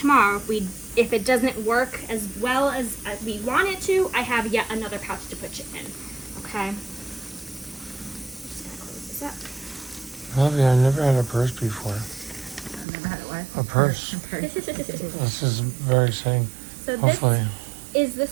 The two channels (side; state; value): left; drops out; at 12.9 s